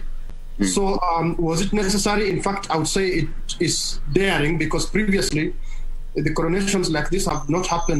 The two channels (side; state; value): both; identical; correlation 1.00